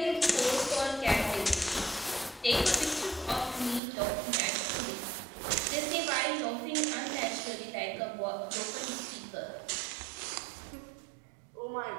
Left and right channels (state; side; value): drops out; left; at 3.8 s